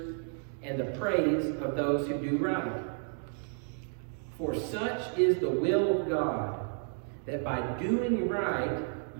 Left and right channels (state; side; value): silent; left; 57 dB below the other